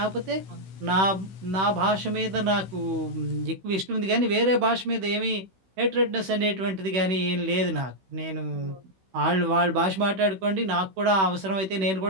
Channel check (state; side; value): late; left; 16 ms